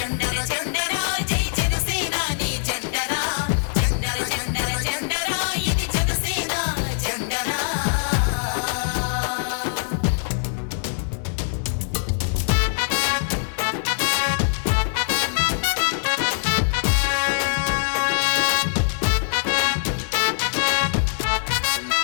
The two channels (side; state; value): right; silent; digital silence